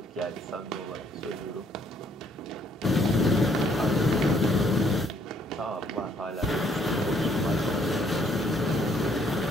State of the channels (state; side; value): normal; both; correlation 0.67